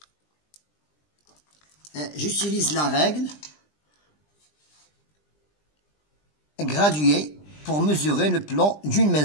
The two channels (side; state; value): right; late; 20 ms